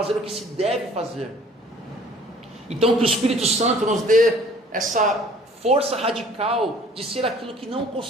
o que se deve fazer. Então, que o Espírito Santo nos dê essa força radical de ser aquilo que não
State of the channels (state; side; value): normal; both; correlation 0.53